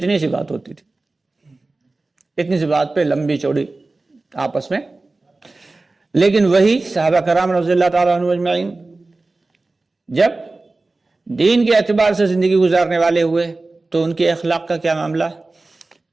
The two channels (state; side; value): quieter; left; 3.3 dB